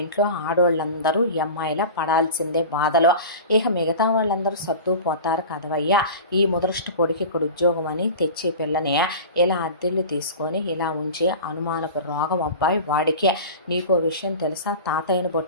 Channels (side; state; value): both; inverted; correlation -0.34